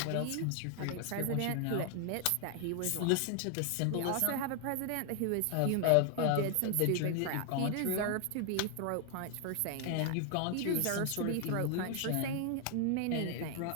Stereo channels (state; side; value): different; both; correlation 0.00